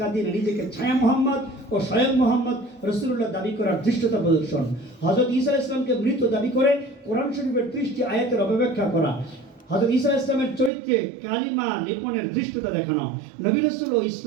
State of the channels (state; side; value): drops out; left; at 10.7 s